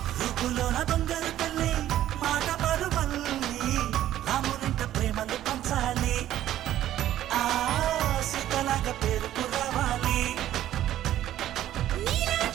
రూపులోన దొంగలు తల్లి మాట పరువల్లి రామునింట ప్రేమలు పంచాలి ఆ సీతలాగా పేరుకు రావాలి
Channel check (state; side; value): quieter; left; 12.7 dB